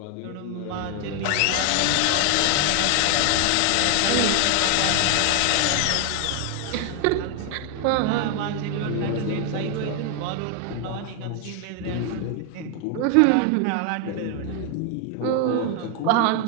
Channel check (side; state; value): both; different; correlation 0.00